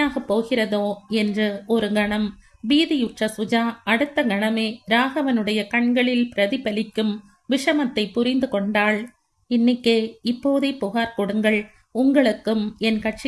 போகிறதோ என்று ஒரு கணம் பீதியுற்ற சுஜா அடுத்த கணமே ராகவனுடைய கண்களில் பிரதிபலிக்கும் விஷமத்தை புரிந்து கொண்டாள். இன்னிக்கே இப்போதே புகார் கொடுங்கள். உங்களுக்கும் என்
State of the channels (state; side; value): identical; both; correlation 1.00